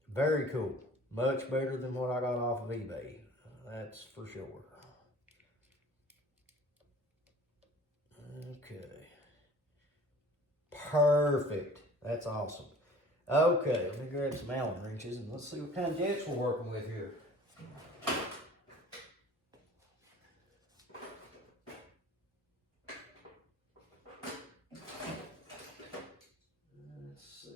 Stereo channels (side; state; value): both; normal; correlation 0.47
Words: Very cool. Much better than what I got off of eBay. That's for sure. Okay. Perfect. That's awesome. Okay, let me grab some Allen wrenches and let's see what kind of jets we're working with here. Let's